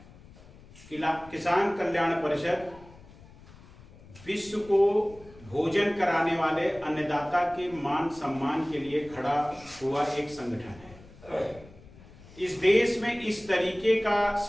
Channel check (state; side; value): noise; left; rumble, 22 dB below the sound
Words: किसान कल्याण परिषद विश्व को भोजन कराने वाले अन्नदाता के मान सम्मान के लिए खड़ा हुआ एक संगठन है। इस देश में इस तरीके का